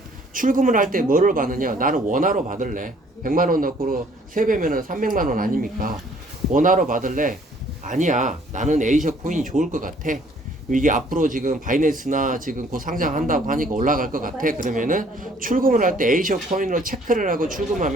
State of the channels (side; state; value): both; normal; correlation 0.60